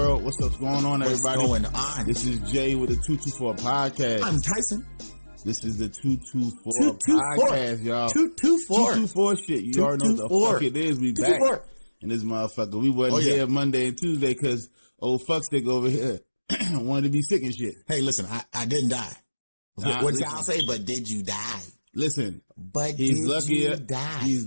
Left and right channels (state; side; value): inverted; both; correlation -1.00